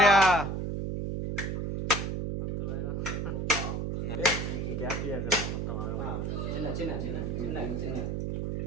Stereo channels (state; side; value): noise; right; hum, 2 dB below the sound